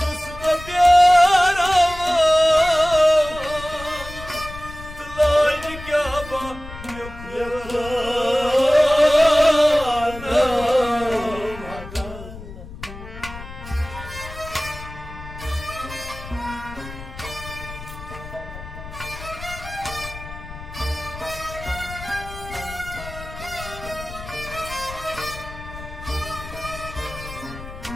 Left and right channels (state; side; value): noise; left; rumble, 13 dB below the sound